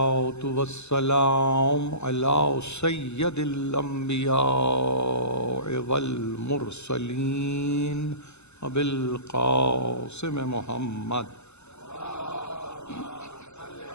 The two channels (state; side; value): late; right; 0.81 ms